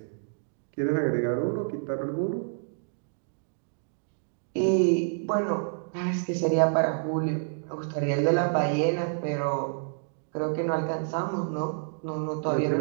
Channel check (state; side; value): silent; left; digital silence